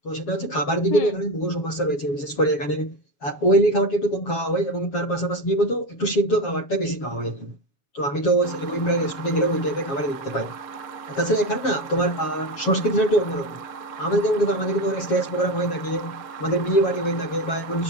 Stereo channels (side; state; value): right; late; 7.2 ms